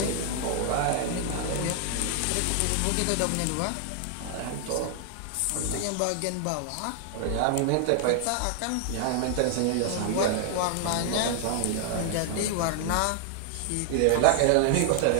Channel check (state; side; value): different; both; correlation 0.00